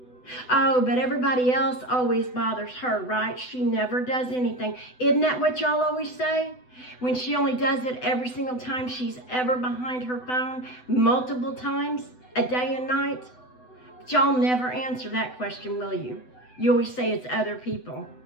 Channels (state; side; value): late; right; 8.0 ms